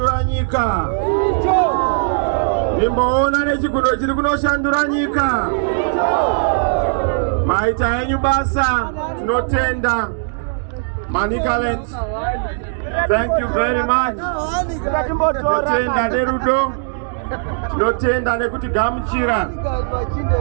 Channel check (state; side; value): silent; left; digital silence